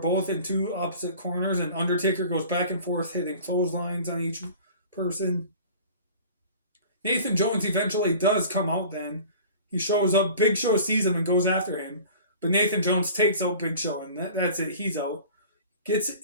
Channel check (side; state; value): both; inverted; correlation -0.43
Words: in two opposite corners, and Undertaker goes back and forth, hitting clotheslines on each person. Nathan Jones eventually does come out then. He shows up, Big Show sees him and goes after him, but Nathan Jones takes out Big Show, and that's it. He's out. Gets